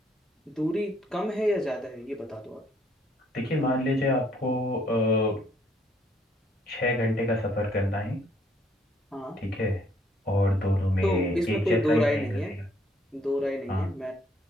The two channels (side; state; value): both; normal; correlation 0.66